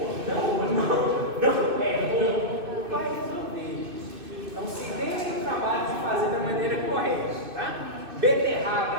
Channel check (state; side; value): late; left; 2.6 ms